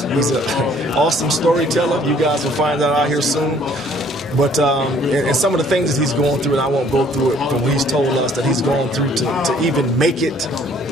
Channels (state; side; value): normal; both; correlation 0.59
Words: he's an awesome storyteller. You guys will find that out here soon. But and some of the things that he's going through, and I won't go through it, but he's told us that he's going through to even make it,